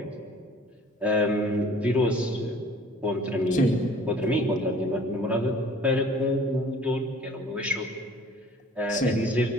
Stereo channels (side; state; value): both; normal; correlation 0.51